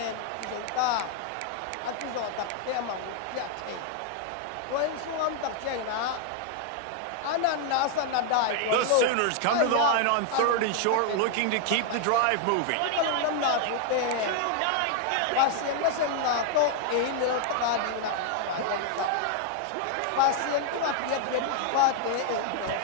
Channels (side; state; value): both; different; correlation 0.00